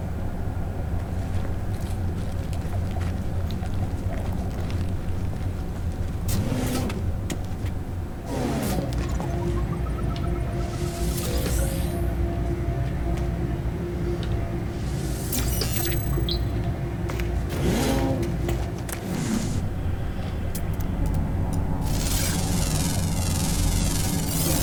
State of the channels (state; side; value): identical; both; correlation 1.00